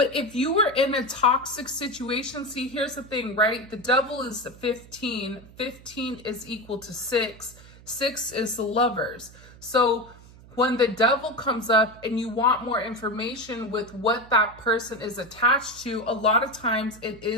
if you were in a toxic situation, see, here's the thing, right? The Devil is the 15. 15 is equal to 6. 6 is the Lovers. So when the Devil comes up and you want more information with what that person is attached to, a lot of times it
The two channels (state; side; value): noise; right; hum, 21 dB below the sound